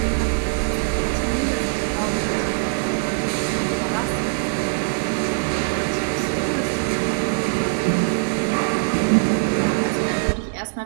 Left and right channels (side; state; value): left; silent; 64 dB below the other